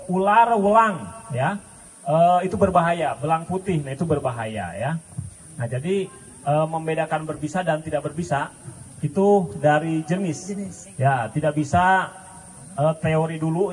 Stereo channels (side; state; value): both; identical; correlation 1.00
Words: Ular welang, ya, itu berbahaya. Belang putih, nah itu berbahaya, ya. Nah jadi membedakan berbisa dan tidak berbisa itu dari jenis, ya, tidak bisa teori